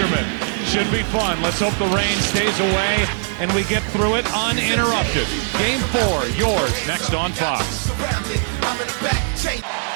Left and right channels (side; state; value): left; silent; digital silence